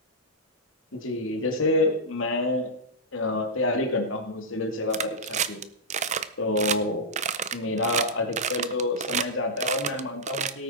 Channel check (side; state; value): both; normal; correlation -0.10